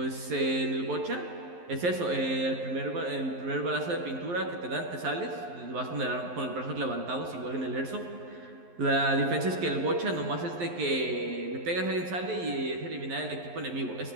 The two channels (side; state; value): left; late; 11 ms